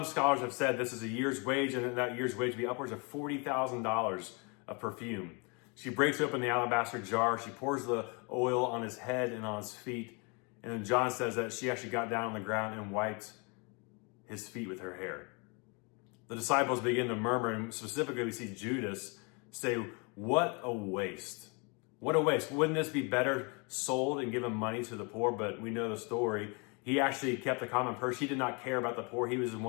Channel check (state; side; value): quieter; right; 32.3 dB